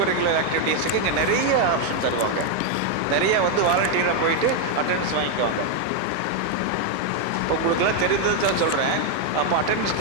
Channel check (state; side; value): different; both; correlation 0.01